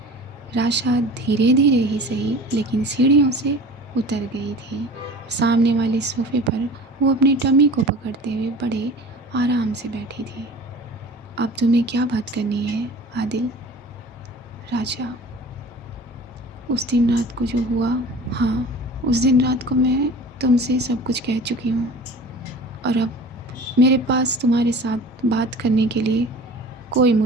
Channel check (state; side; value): normal; both; correlation 0.40